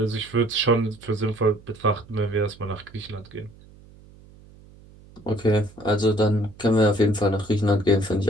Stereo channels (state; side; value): noise; right; hum, 23 dB below the sound